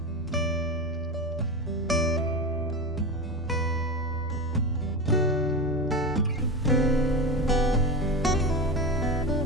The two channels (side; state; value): both; normal; correlation 0.23